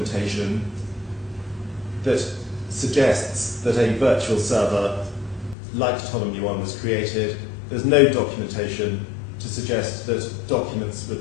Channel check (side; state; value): right; drops out; at 5.6 s